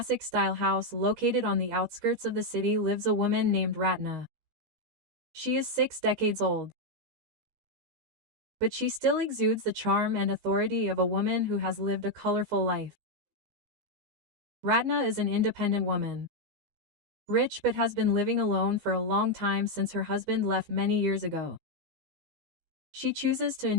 house located on the outskirts of the city lives a woman named Ratna. She is 6 decades old, but she still exudes the charm and authority of a woman who has lived a colorful life. Ratna is an independent woman, rich but has been living alone for a long time since her husband left many years ago. She chooses to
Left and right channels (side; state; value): left; late; 15 ms